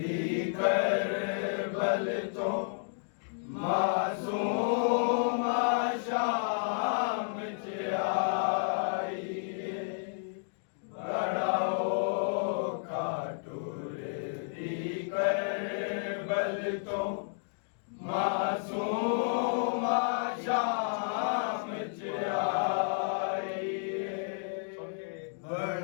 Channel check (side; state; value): right; silent; digital silence